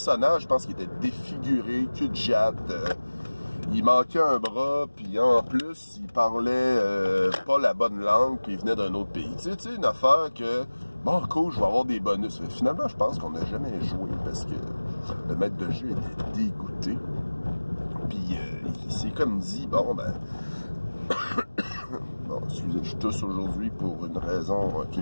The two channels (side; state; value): both; inverted; correlation -1.00